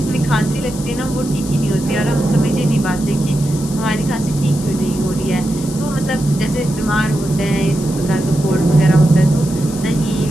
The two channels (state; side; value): noise; left; hiss, 13 dB below the sound